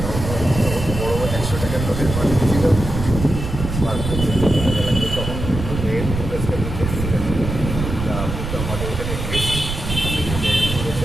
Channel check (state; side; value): noise; right; rumble, 5 dB below the sound